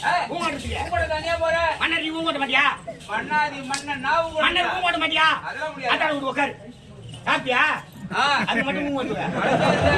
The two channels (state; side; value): identical; both; correlation 1.00